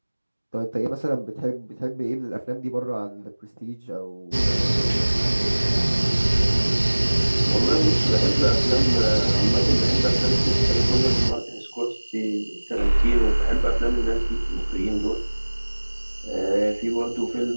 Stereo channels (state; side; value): inverted; both; correlation -1.00